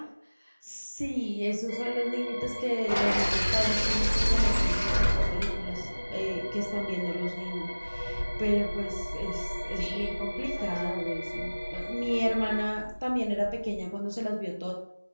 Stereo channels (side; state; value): both; inverted; correlation -1.00